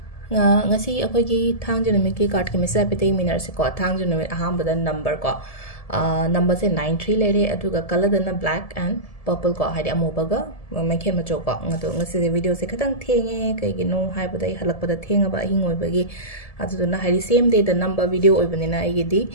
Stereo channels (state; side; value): late; right; 1.7 ms